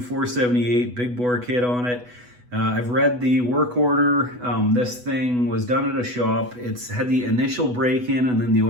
big bore kit on it. I've read the work order. This thing was done at a shop. It's had the initial break-in and then the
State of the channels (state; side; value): late; left; 8.1 ms